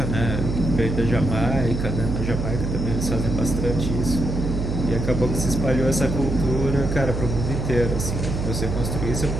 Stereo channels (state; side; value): noise; right; hum, 2 dB below the sound